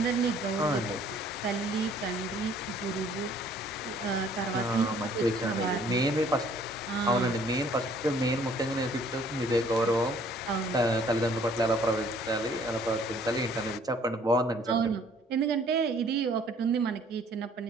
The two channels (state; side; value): normal; both; correlation 0.58